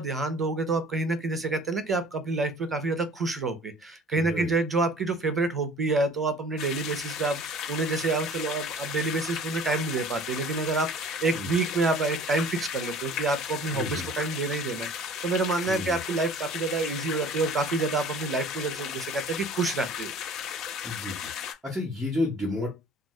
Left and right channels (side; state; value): both; normal; correlation 0.48